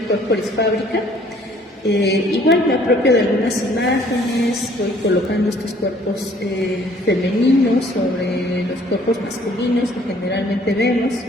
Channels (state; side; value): normal; both; correlation 0.58